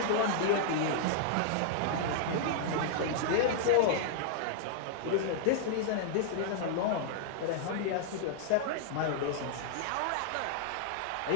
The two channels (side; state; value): both; different; correlation -0.01